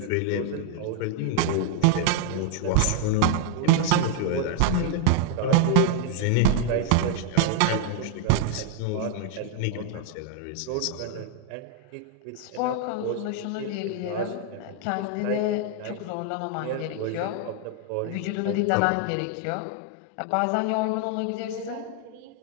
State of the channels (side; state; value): both; different; correlation 0.00